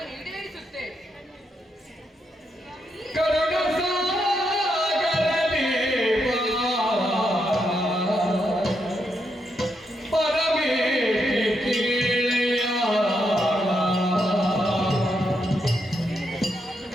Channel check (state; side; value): normal; both; correlation 0.81